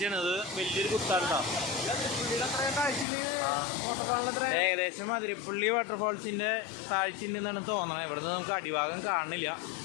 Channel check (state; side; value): drops out; right; at 3.1 s